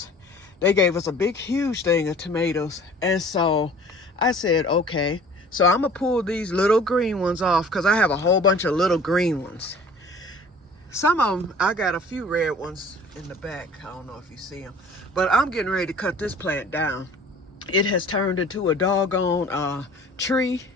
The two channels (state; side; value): normal; both; correlation 0.48